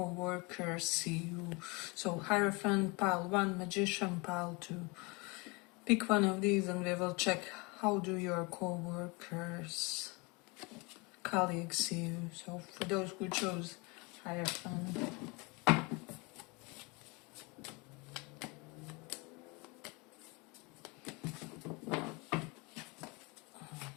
see you. So Hierophant pile 1, Magician pile 2. Pick one of these and we will check how do your co-workers, colleagues see you. So for those who chose Hierophant,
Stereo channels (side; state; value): right; quieter; 28.0 dB